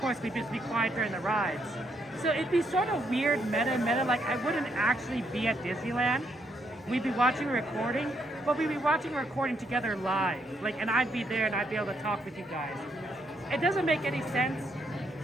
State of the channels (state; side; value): normal; both; correlation 0.75